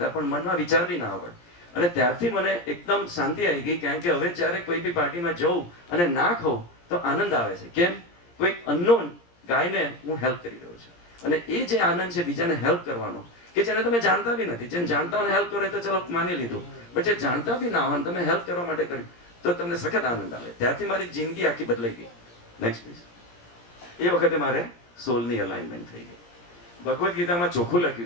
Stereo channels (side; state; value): right; late; 17 ms